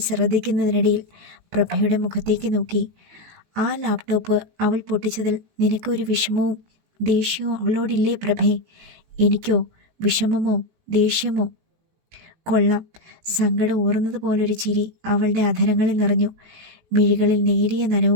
ശ്രദ്ധിക്കുന്നതിനിടയിൽ പ്രഭയുടെ മുഖത്തേക്ക് നോക്കി. ആ ലാപ്ടോപ്പ് അവൾ പൊട്ടിച്ചതിൽ നിനക്കൊരു വിഷമവും ദേഷ്യവും അവളോടില്ലേ പ്രഭേ? എനിക്കോ വിഷമമോ ദേഷ്യമോ? കൊള്ളാം. സങ്കടം ഊറുന്നത് പോലൊരു ചിരി അവളുടെ അധരങ്ങളിൽ നിറഞ്ഞു. മിഴികളിൽ നേരിയ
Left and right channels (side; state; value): left; late; 18 ms